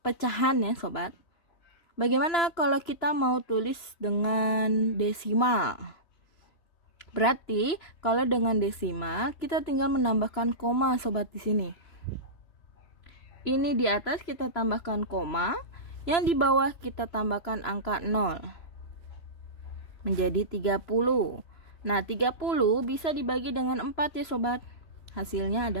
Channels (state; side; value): late; right; 3.0 ms